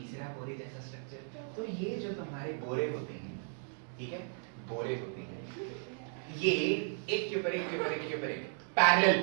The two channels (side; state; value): left; silent; 54 dB below the other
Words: बोरे जैसा स्ट्रक्चर। तो ये जो तुम्हारे बोरे होते हैं, ठीक है, बोरे होते हैं, ये एक के ऊपर एक के ऊपर एक के ऊपर एक पैरेलल